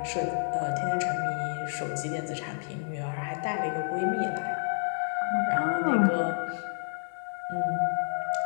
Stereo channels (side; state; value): right; silent; digital silence